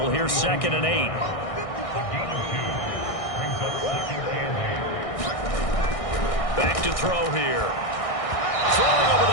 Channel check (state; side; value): late; right; 1.6 ms